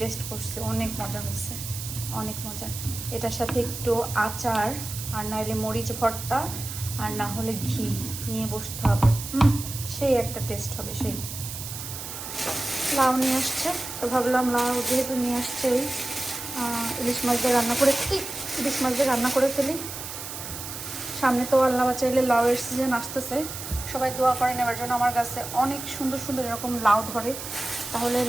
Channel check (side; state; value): right; noise; hiss, 8 dB below the sound